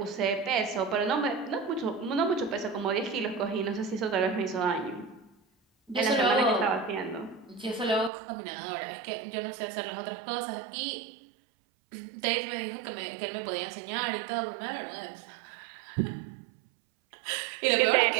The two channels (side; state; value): left; drops out; at 8.1 s